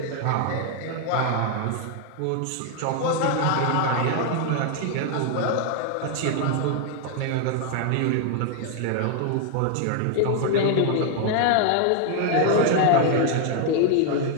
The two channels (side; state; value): both; different; correlation 0.00